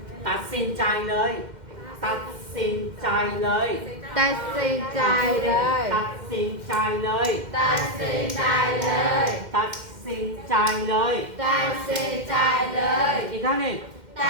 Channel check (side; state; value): left; late; 2.1 ms